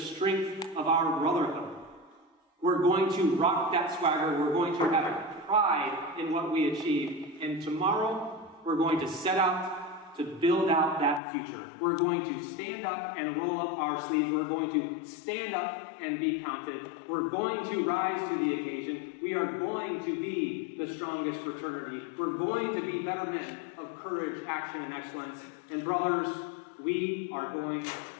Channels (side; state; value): right; drops out; at 11.2 s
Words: of our brotherhood. We're going to rock that swagger. We're going to have pride in what we achieve. And tomorrow, we're going to set out to build out that future. We're going to stand up and roll up our sleeves. We're going to stand up and be counted. We're going to rise to the occasion. We are going to be the strongest fraternity. We're going to be better men of courage, action, and excellence. And brothers, we are going